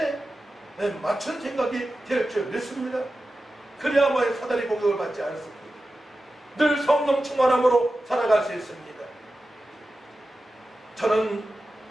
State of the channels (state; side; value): normal; both; correlation 0.93